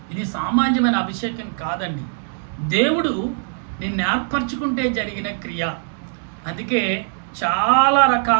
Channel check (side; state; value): left; silent; 65 dB below the other